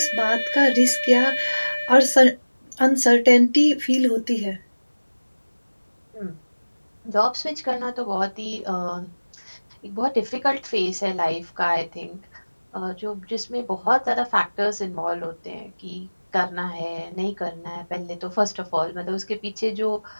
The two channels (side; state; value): both; inverted; correlation -1.00